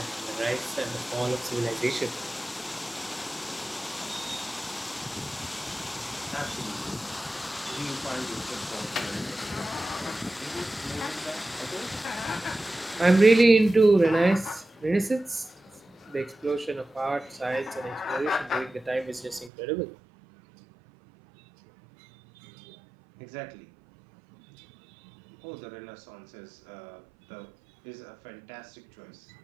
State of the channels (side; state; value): left; drops out; at 19.5 s